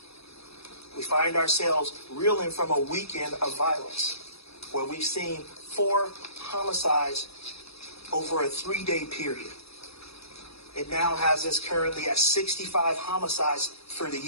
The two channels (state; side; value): late; right; 0.78 ms